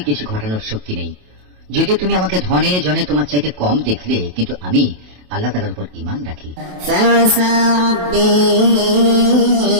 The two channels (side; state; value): left; late; 27 ms